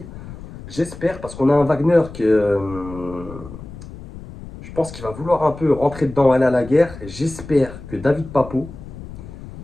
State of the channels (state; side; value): noise; left; rumble, 14 dB below the sound